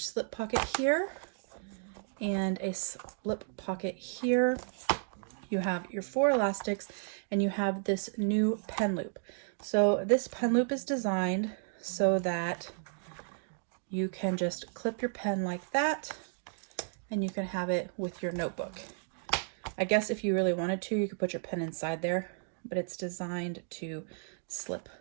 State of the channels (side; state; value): left; silent; digital silence